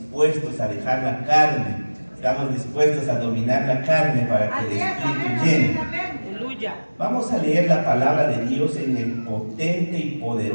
a dejar la carne, estamos dispuestos a dominar la carne para que el Espíritu llene. Vamos a leer la palabra de Dios en el potente y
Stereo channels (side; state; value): both; inverted; correlation -1.00